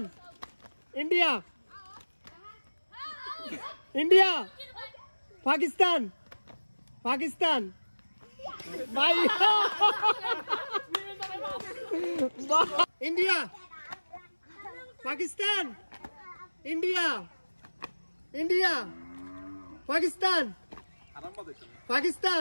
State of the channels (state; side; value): inverted; both; correlation -1.00